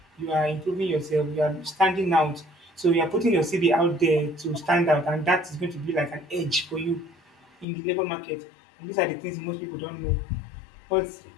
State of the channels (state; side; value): drops out; right; at 7.7 s